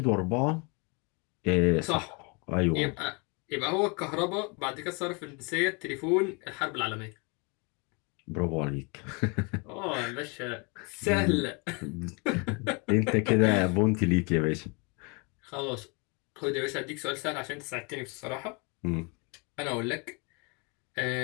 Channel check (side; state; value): right; quieter; 31.7 dB